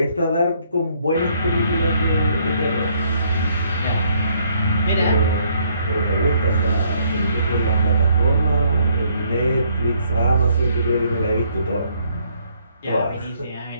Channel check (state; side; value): inverted; both; correlation -0.67